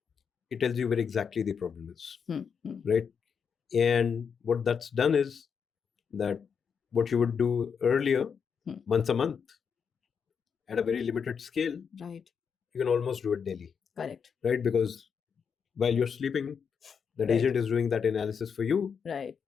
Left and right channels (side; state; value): right; quieter; 6.6 dB